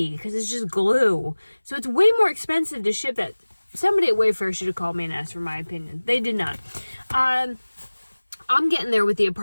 because it's just glue. So it's way more expensive to ship that. Somebody at Wayfair should have called me and asked for my opinion. They did not. I'm getting there with the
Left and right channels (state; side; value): inverted; both; correlation -1.00